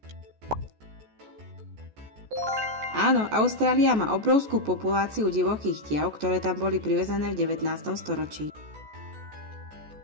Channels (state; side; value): late; left; 14 ms